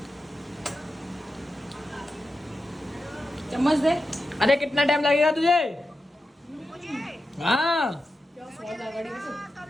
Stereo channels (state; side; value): normal; both; correlation 0.90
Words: चम्मच दे। अरे कितना टाइम लगेगा तुझे? हाँ